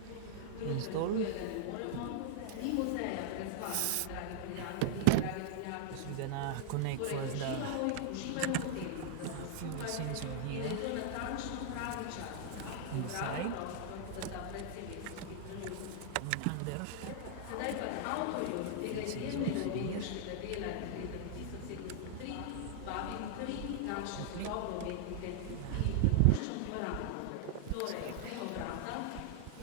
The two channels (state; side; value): different; both; correlation 0.00